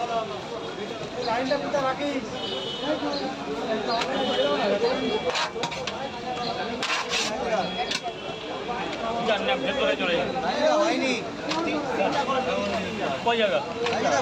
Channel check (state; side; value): identical; both; correlation 1.00